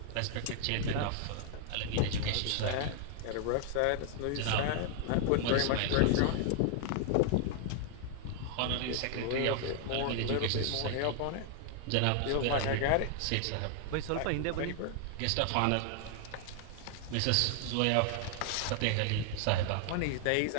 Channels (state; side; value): different; both; correlation 0.00